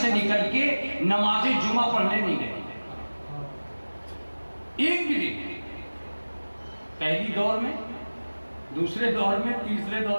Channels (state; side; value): inverted; both; correlation -1.00